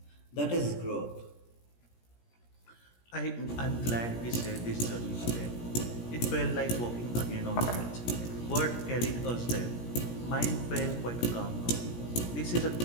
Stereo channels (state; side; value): late; right; 17 ms